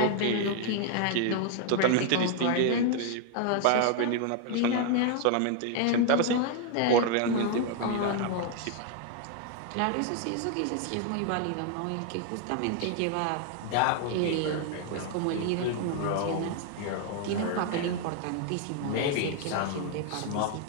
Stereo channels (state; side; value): different; both; correlation 0.00